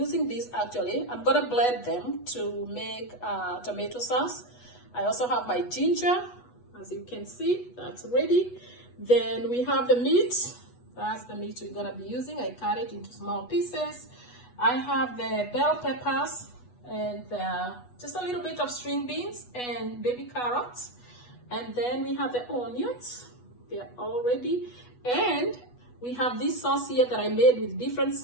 this actually. I'm gonna blend them to make tomato sauce. I also have my ginger, as you can see, that's ready. Then we have the meat. That's the meat we're gonna be using. I cut it into small pieces. I have the bell peppers and just a little bit of string beans and baby carrots. And then we have the onions. They're all ready. And we have this sauce here that I made with different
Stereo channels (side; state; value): right; late; 8.2 ms